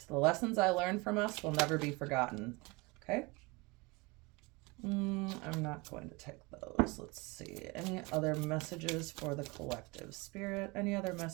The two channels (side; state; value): left; quieter; 26.0 dB